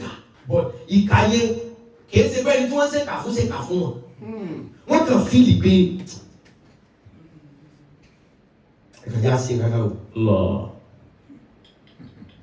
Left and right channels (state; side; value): identical; both; correlation 1.00